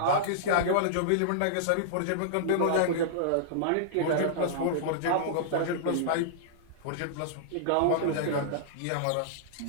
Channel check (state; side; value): different; both; correlation -0.02